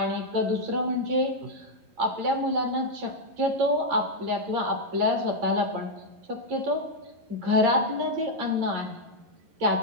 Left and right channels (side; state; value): left; late; 11 ms